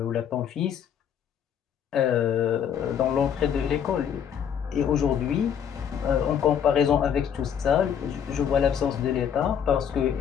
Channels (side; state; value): right; quieter; 8.3 dB